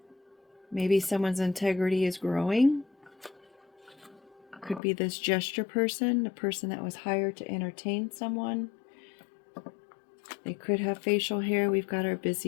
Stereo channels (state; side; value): drops out; right; at 4.8 s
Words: Maybe someone's integrity is growing. Could be this gesture person, a person that was hired to entertain someone. They could have facial hair. We've got our